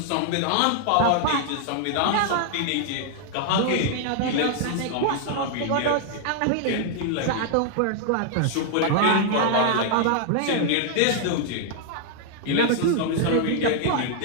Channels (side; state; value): both; different; correlation 0.00